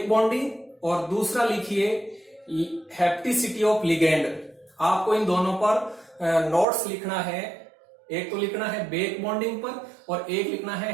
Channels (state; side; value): drops out; left; at 6.7 s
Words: बॉन्डिंग और दूसरा लिखिए हैप्टिसिटी ऑफ लिगेंड। आपको इन दोनों पर नोट्स लिखना है। एक तो लिखना है बेक बॉन्डिंग पर और एक लिखना है